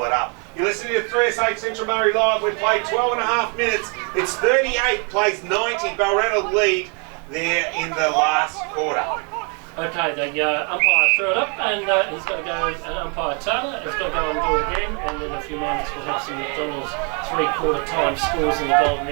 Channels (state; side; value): quieter; left; 36.2 dB